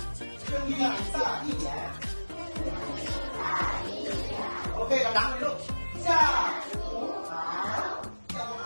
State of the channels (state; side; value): inverted; both; correlation -1.00